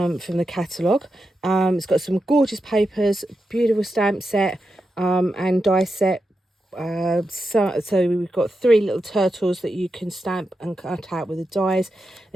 the catalogue. It's got some gorgeous papers, beautiful stamp set and die set. So we've got 3 little turtles that you can stamp and cut out with the dies.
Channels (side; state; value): both; normal; correlation 0.88